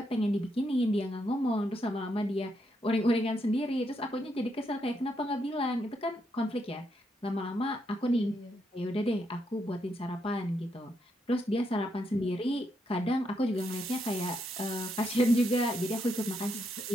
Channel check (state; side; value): normal; both; correlation 0.79